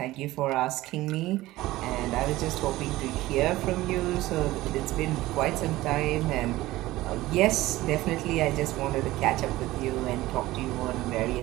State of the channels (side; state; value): left; quieter; 17.4 dB